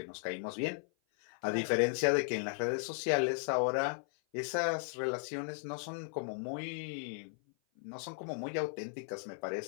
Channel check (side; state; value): right; silent; 54 dB below the other